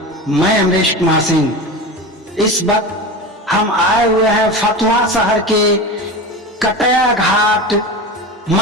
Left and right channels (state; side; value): normal; both; correlation 0.28